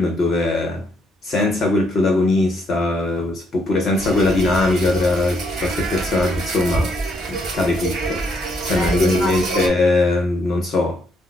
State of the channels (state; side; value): normal; both; correlation 0.73